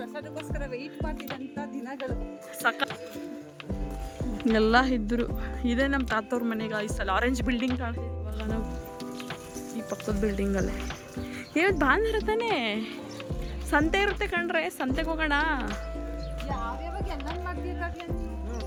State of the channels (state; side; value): identical; both; correlation 1.00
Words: ವೆಯ್ಟ್ ಮಾಡ್ತಿದ್ದಂಥ ದಿನಗಳು. ಸಕ ಎಲ್ಲ ಇದ್ರು. ಇದೇ ನಮ್ಮ ತಾತವ್ರ ಮನೆ ಗಾಯ್ಸ್. ಅಲ್ಲಿ ಆರೆಂಜ್ ಬಿಲ್ಡಿಂಗ್ ಕಾಣ್ತಿದ್ವಿ ಇವಾಗ ನಾವು, ಈ ಪಕ್ಕದ ಬಿಲ್ಡಿಂಗಲ್ಲೇ. ಇವತ್ತು ಭಾನುವಾರ ತಾನೇ, ಸಂತೆ ಇರುತ್ತೆ ಕಣ್ರೆ, ಸಂತೆಗೆ ಹೋಗೋಣ. ಯಾವ್ಯಾವಾಗ ಎಲ್ಲ ಮಾಡ್ಬೇಕಾಗ್ಲಿ